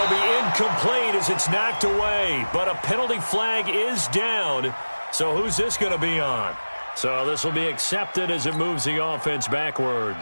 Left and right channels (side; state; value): both; inverted; correlation -1.00